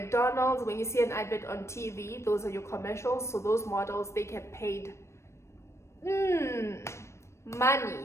when you see an advert on TV, those are your commercials. So those models, they get paid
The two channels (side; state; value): right; late; 0.13 ms